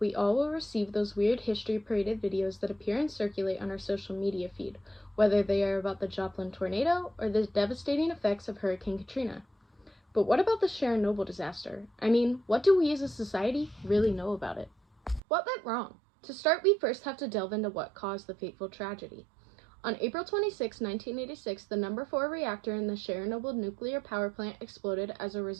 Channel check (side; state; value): left; drops out; at 15.2 s